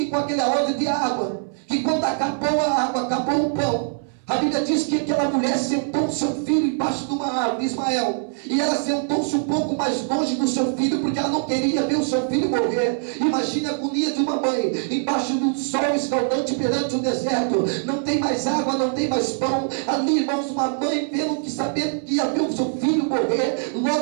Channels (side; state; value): left; silent; 64 dB below the other